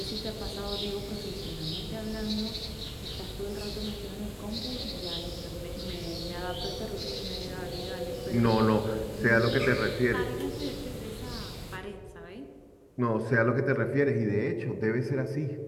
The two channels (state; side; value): identical; both; correlation 1.00